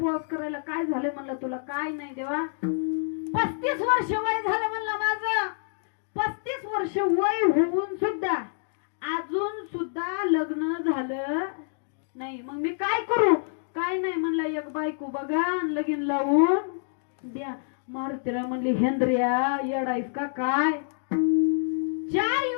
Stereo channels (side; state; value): right; silent; digital silence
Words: करायला, काय झालं म्हणलं तुला. काय नाही देवा, 35 वर्ष वय झालं म्हणलं माझं, 35 वर्ष वय होऊन सुद्धा अजून सुद्धा लग्न झालं नाही. मग मी काय करू. काय नाही म्हणला, एक बायको बघा लगीन लावून द्या. मारुतीराय म्हणली, हेंद्रिया येडायस का काय, 4